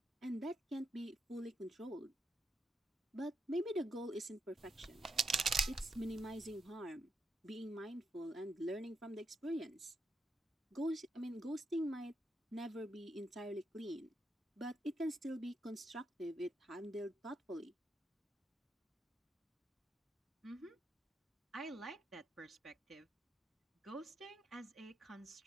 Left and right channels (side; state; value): both; normal; correlation 0.82